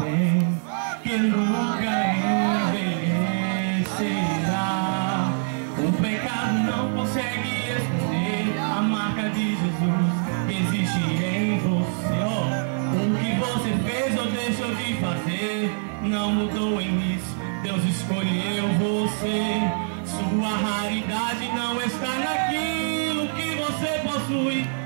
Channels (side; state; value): left; silent; digital silence